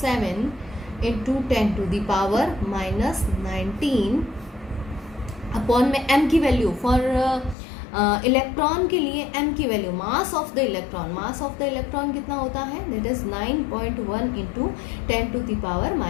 इंटू 10⁻⁻19 अपॉन में m की वैल्यू फॉर इलेक्ट्रॉन के लिए m की value, mass of the electron कितना होता है? दैट इज 9.1 इंटू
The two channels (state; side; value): drops out; right; at 7.6 s